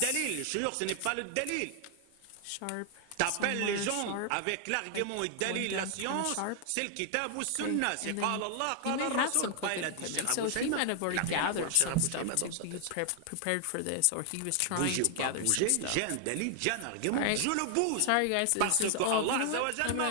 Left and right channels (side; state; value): both; different; correlation 0.00